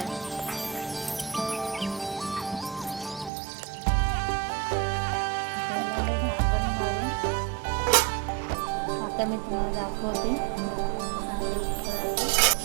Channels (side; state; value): left; drops out; at 3.3 s